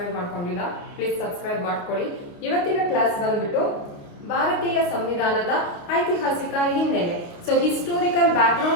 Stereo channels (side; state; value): right; late; 29 ms